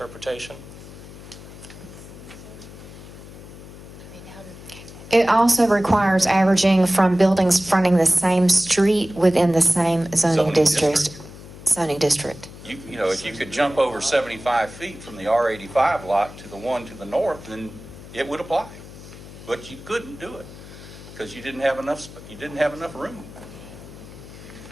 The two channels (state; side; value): noise; left; hum, 16 dB below the sound